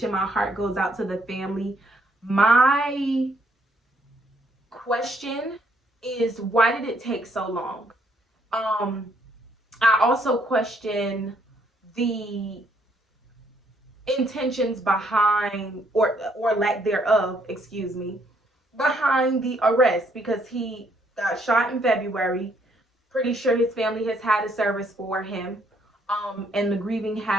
My heart goes out to the family. My question is, why did it take so long? I also question the intentions behind or lack thereof, excuse me, behind the arrest, because he got shot in February. Pretty sure his family has had a service for him. And the grieving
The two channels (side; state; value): both; normal; correlation 0.69